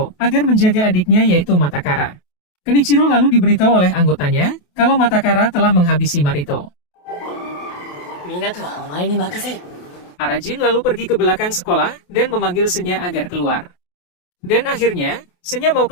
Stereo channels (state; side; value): late; right; 28 ms